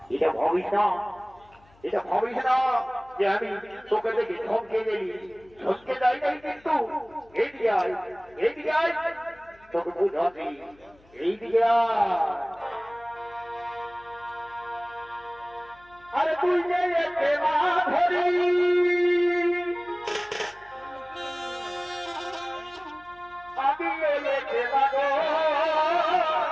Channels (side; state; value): left; noise; hum, 29 dB below the sound